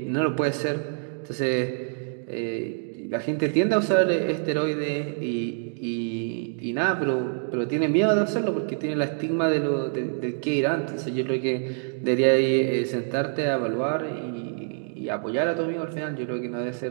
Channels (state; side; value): silent; left; 61 dB below the other